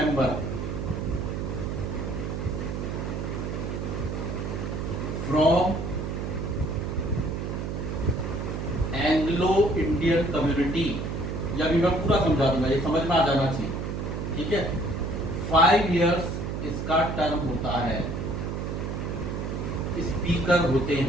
from Indian community, या भी मैं पूरा समझा दूंगा, ये समझ में आ जाना चाहिए, ठीक है। 5 इयर्स इसका टर्म होता है। स्पीकर होते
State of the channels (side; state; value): right; noise; hum, 3 dB below the sound